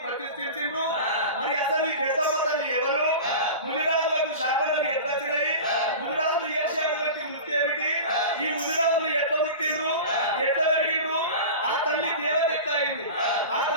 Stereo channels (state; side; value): inverted; both; correlation -0.32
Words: ప్రతిష్ఠించిండ్రు? మరి అసలు ఈ పెద్దమ్మ తల్లి ఎవరు? ముదిరాజులకు శాపనలు ఎట్లా వచ్చినాయి? ముదిరాజులు చేసేటువంటి వృత్తి ఏమిటి? ఈ ముదిరాజులు ఎట్లా పుట్టిండ్రు, ఎట్లా పెరిగిండ్రు? ఆ తల్లి దేవత ఎట్లా అయింది? ఆ